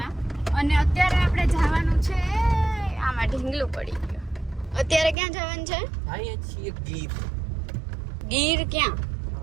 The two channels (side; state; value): left; drops out; at 5.2 s